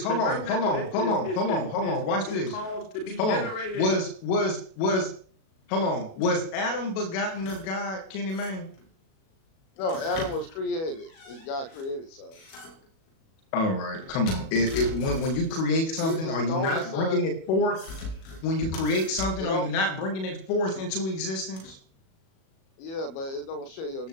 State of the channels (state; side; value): late; right; 37 ms